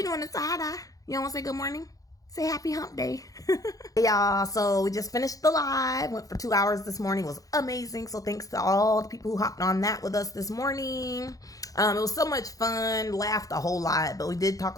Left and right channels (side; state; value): right; late; 0.17 ms